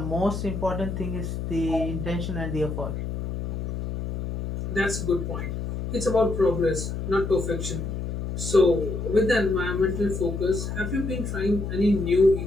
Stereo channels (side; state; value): left; noise; hum, 4 dB below the sound